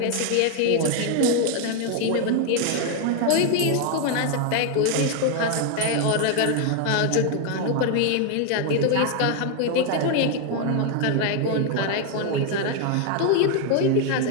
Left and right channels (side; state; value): both; different; correlation 0.00